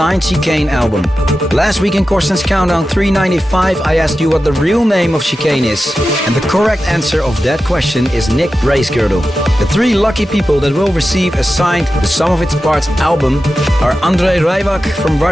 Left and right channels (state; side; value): normal; both; correlation 0.93